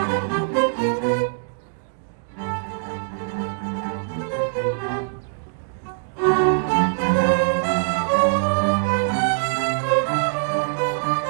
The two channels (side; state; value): left; silent; digital silence